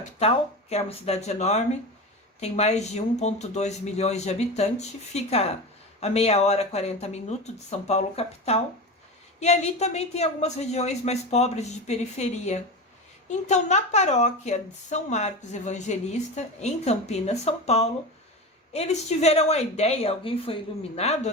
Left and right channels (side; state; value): both; normal; correlation 0.25